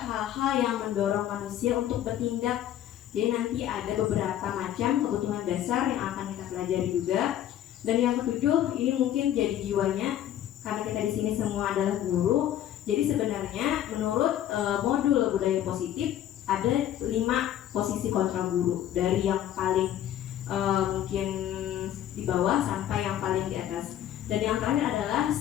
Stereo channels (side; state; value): right; quieter; 11.4 dB